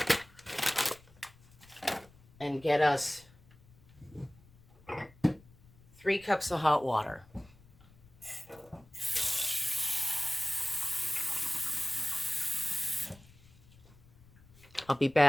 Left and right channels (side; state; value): left; noise; rumble, 26 dB below the sound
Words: And get us 3 cups of hot water. I'll be